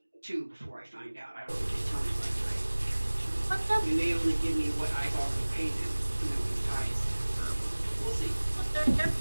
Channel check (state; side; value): inverted; both; correlation -1.00